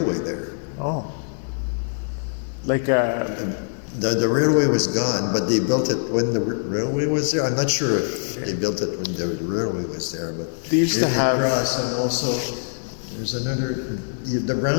there. Oh. Like the railway was gone, but they built it when the railway was there. I'm not sure if they built it when the railway was there, but they used to have. Across, and also there's the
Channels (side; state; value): right; silent; digital silence